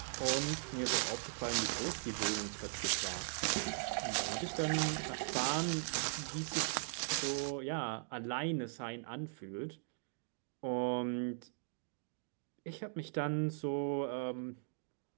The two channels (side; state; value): left; silent; digital silence